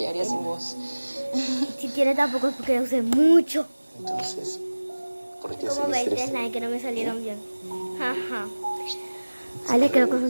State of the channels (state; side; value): inverted; both; correlation -1.00